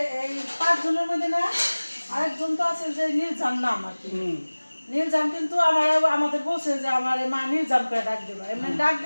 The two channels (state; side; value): inverted; both; correlation -1.00